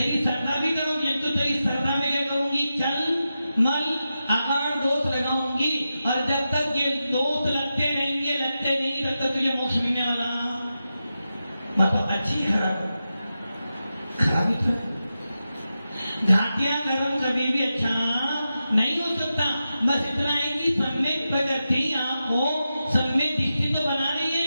श्रद्धा भी करूंगी। तो तेरी श्रद्धा में क्या करूंगी? चल मल आकार दोष लगाऊंगी। और जब तक ये दोष लगते नहीं तब तक तुझे मोक्ष मिलने वाला। मतलब अच्छी खराब? खराब ही तो। घाटियां गर्म कभी भी अच्छा नहीं हो सकता। बस इतना है कि सम्यक प्रकृति आपको सम्यक दृष्टि तो बना रही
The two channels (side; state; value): both; inverted; correlation -0.90